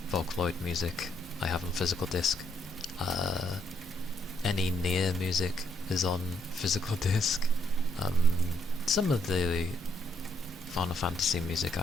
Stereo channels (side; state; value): both; normal; correlation 0.73